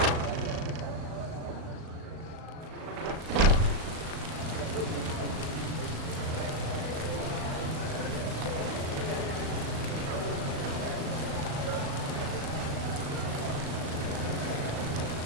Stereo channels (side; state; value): left; late; 37 ms